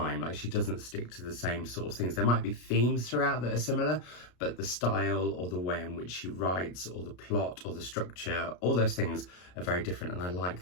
Like, she doesn't stick to the same sort of things. There might be themes throughout that are similar, but the style or the way in which she writes or the plot or the structure, all those things are very different, and I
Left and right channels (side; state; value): right; late; 33 ms